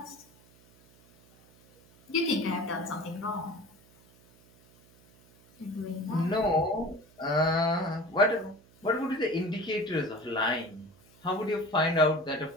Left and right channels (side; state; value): right; noise; hum, 28 dB below the sound